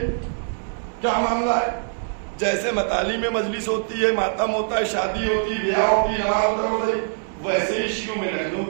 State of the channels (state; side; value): silent; left; 63 dB below the other